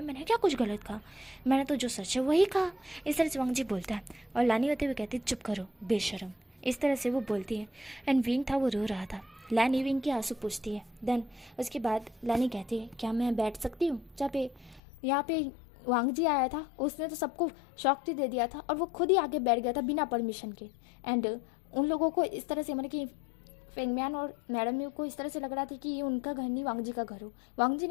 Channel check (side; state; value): right; drops out; at 14.8 s